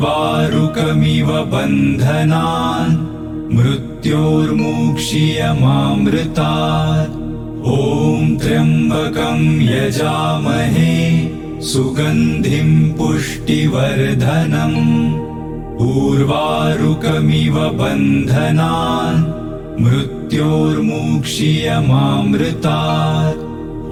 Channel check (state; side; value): identical; both; correlation 1.00